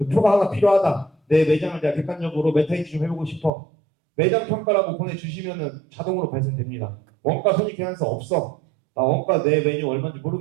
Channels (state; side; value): drops out; left; at 3.5 s